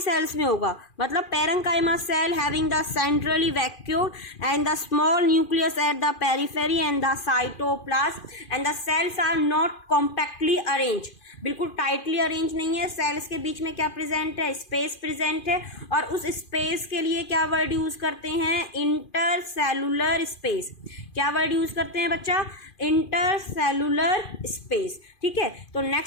में होगा। मतलब parenchyma cell having the centrally vacuole and the small nucleus at the periphery and the cytoplasm and the cells are not compactly arrange, बिल्कुल टाइटली अरेंज नहीं है। सेल्स के बीच में क्या प्रेजेंट है? स्पेस प्रेजेंट है। और उस स्पेस के लिए क्या वर्ड यूज करते हैं? Intercellular space. क्या वर्ड यूज करते हैं बच्चा? Intercellular space. ठीक है, तो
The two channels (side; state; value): right; late; 2.4 ms